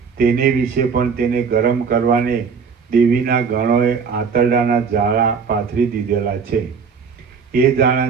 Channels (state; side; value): quieter; left; 5.9 dB